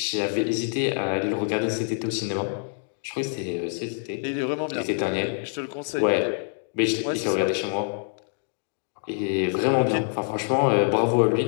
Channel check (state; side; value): silent; right; 57 dB below the other